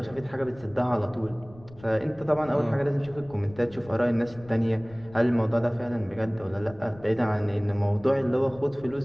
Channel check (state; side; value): noise; left; rumble, 21 dB below the sound